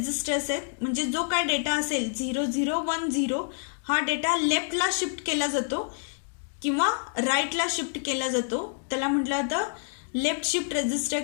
आहेत. म्हणजे जो काय डेटा असेल 0010 हा डेटा लेफ्टला शिफ्ट केला जातो किंवा राईटला शिफ्ट केला जातो त्याला म्हटलं जातं लेफ्ट शिफ्ट रेजिस्टर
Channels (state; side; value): silent; right; digital silence